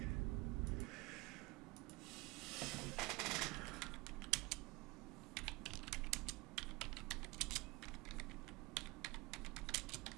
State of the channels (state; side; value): quieter; left; 23.9 dB